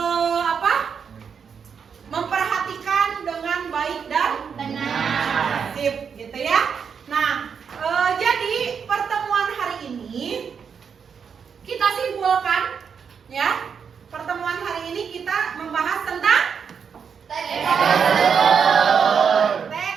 memperhatikan dengan baik dan benar. Sip, gitu ya. Nah, jadi pertemuan hari ini kita simpulkan ya. Pertemuan hari ini kita membahas tentang teks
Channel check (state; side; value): quieter; left; 6.7 dB